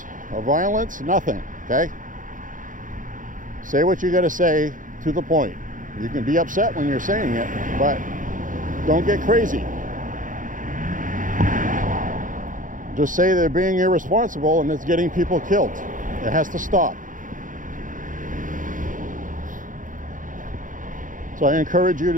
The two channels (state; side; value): late; left; 0.38 ms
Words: or violence, nothing, okay? Say what you gotta say to the point. You can be upset when you're saying it, but don't get crazy. Just say they're being irresponsible and it's getting people killed. It has to stop. So I encourage you